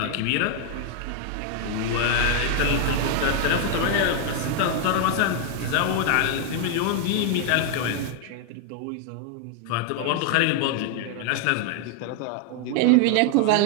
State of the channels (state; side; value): different; both; correlation 0.00